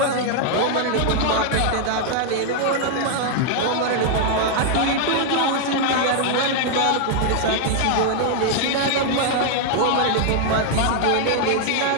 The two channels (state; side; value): different; both; correlation 0.00